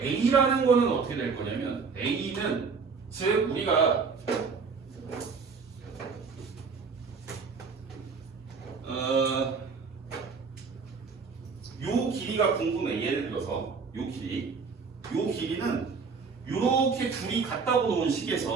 거는 어떻게 될 거냐면 A는 즉 우리가 요 길이가 궁금해. 예를 들어서 요 길이는 요렇게 둘이 같다고 놓은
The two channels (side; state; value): left; quieter; 5.2 dB